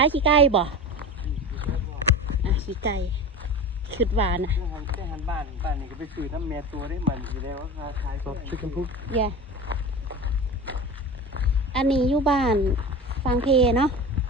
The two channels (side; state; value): both; normal; correlation 0.30